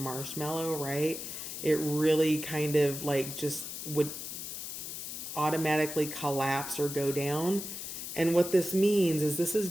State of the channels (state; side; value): noise; left; hiss, 7 dB below the sound